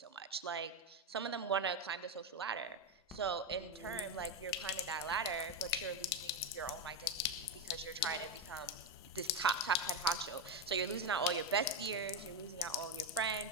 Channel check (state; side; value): normal; both; correlation 0.08